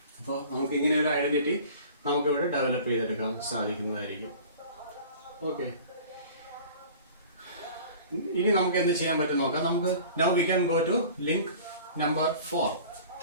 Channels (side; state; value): both; inverted; correlation -0.43